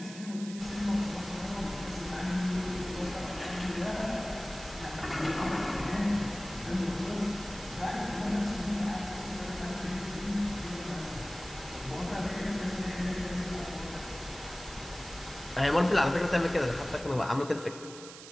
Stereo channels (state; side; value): noise; right; hiss, 14 dB below the sound